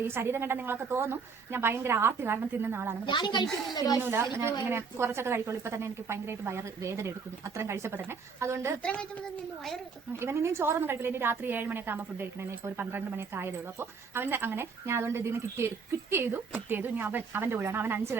ഈ ശരീരം കണ്ടാൽ നിങ്ങളൊക്കെ തോന്നും ഞാൻ ഭയങ്കര ആർത്തി കാരണം തിന്നുന്ന ആളാണ്. തിന്നൂല. ഞാൻ ഇങ്ങനെ കുറച്ചൊക്കെ കഴിക്കുള്ളൂ. ഇപ്പൊ തന്നെ എനിക്ക് ഭയങ്കരമായിട്ട് വയറ് വേദന എടുക്കുന്നു അത്രയും കഴിച്ചപ്പോ തന്നെ. അതുകൊണ്ട് ഇവൻ ഇനിയും ചോറൊന്നും കഴിക്കില്ല. ഇനി രാത്രി 7 മണിയൊക്കെ ആകുമ്പോൾ ഫുഡ് കഴിക്കണേ. ഇപ്പോൾ ഒരു 12 മണിയൊക്കെ ആയതേ ഉള്ളൂ. അപ്പോൾ അവന്റെ അങ്ങനെ ഞാൻ അതുകൊണ്ട് ഇതിന് കിറ്റ് ചെയ്തു. ഇനി അവന്റെ കൂടെയാണ്. അവൻ 5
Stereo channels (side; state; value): left; quieter; 5.3 dB